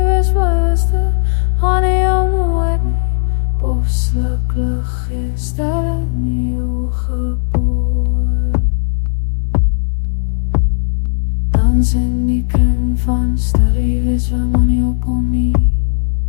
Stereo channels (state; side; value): silent; right; digital silence